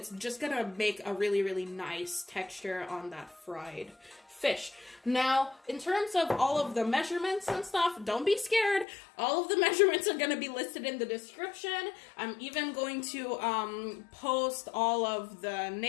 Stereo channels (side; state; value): right; drops out; at 8.8 s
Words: just gonna make a really, really nice texture on that fried fish. Now, in terms of all of the measurements and stuff, don't be scared. All of the measurements are going to be listed in the description. I'm even going to post all of the